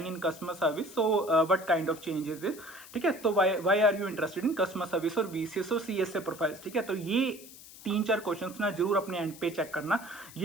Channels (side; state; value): left; noise; hiss, 18 dB below the sound